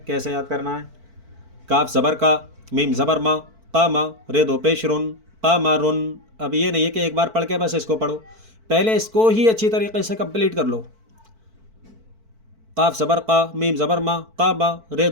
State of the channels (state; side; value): late; left; 4.5 ms